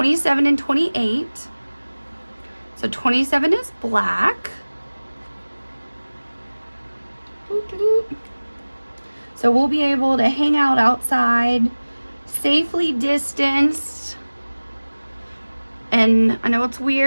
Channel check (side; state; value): both; inverted; correlation -1.00